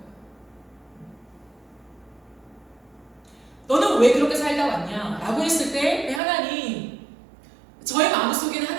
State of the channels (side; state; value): left; drops out; at 6.2 s